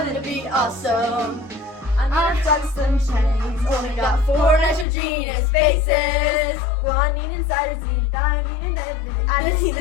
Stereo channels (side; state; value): right; drops out; at 4.9 s